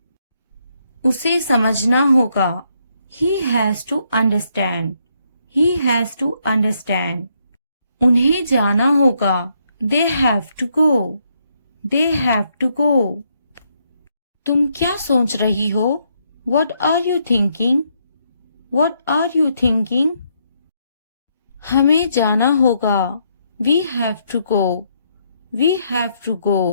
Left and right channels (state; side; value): inverted; both; correlation -0.75